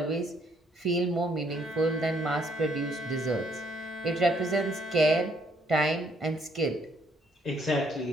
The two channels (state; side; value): normal; both; correlation 0.68